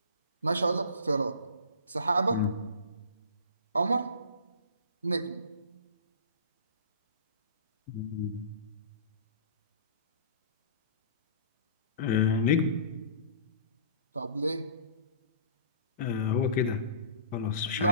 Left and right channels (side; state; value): both; inverted; correlation -0.40